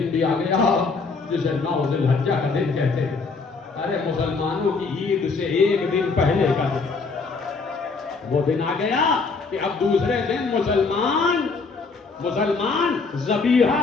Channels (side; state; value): right; quieter; 4.4 dB